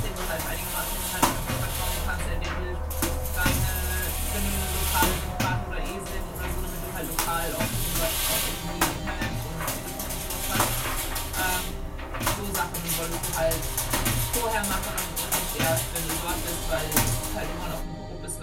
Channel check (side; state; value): both; identical; correlation 1.00